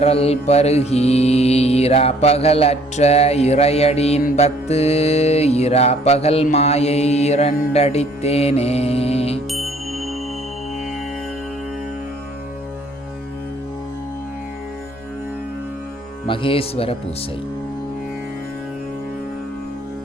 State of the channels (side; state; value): both; normal; correlation 0.59